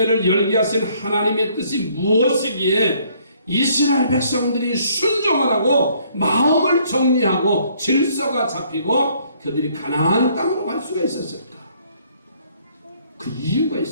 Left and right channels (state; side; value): inverted; both; correlation -0.64